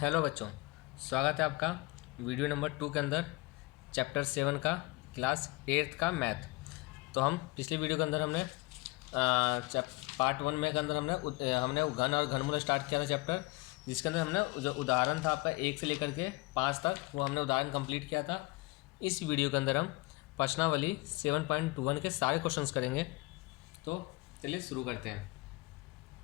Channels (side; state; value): right; quieter; 23.2 dB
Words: हेलो बच्चों, स्वागत है आपका वीडियो नंबर 2 के अंदर चैप्टर 7 का क्लास 8 का मैथ। तो हम पिछले वीडियो के अंदर हमने पार्ट 1 में के अंदर हमने घन और घनमूल स्टार्ट किया था चैप्टर, जिसके अंदर हमने जो उदाहरण था आपका 1 से लेकर के 5 तक वो हमने उदाहरण कंप्लीट किया था। इस वीडियो के अंदर हम प्रश्नावली 7.1 के सारे क्वेश्चंस करेंगे। तो चलिए शुरू करते हैं।